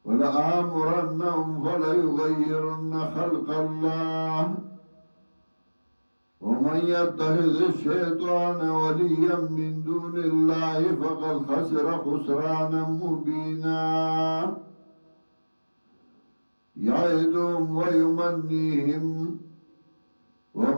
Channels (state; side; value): inverted; both; correlation -1.00